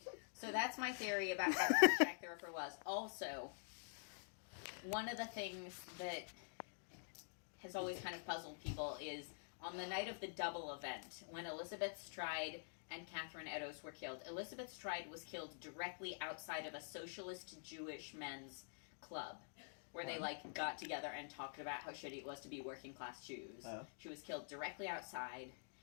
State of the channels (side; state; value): right; silent; digital silence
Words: So that's my theory about how Jack the Ripper was. Also, one of the things that has always kind of puzzled people is on the night of the double event, when Elizabeth Stride and Catherine Eddowes were killed. Elizabeth Stride was killed directly outside of a socialist Jewish men's club, where they like got together and talked about how shitty it was to be working class Jews. Oh. She was killed directly outside,